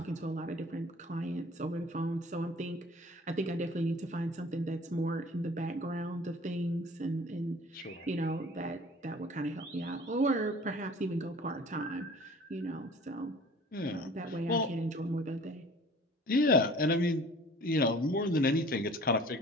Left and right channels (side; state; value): both; normal; correlation 0.47